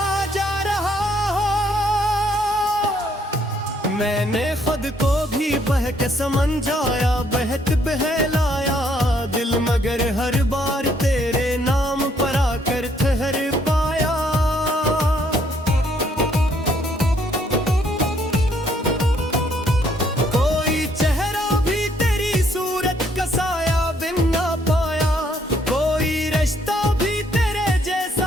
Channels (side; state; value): both; normal; correlation 0.68